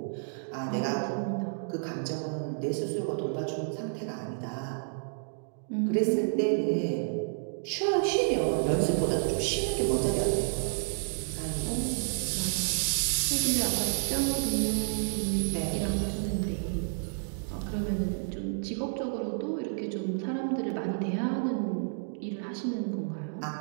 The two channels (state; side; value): silent; left; digital silence